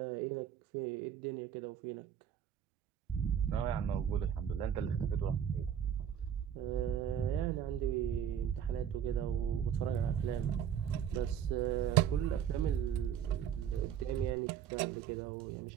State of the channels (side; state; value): left; quieter; 8.9 dB